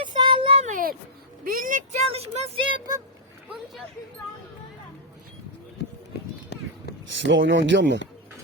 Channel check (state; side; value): normal; both; correlation -0.05